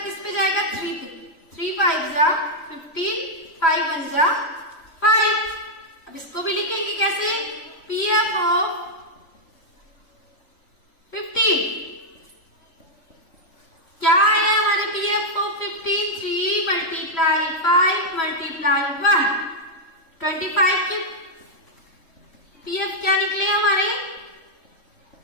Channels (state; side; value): late; right; 3.1 ms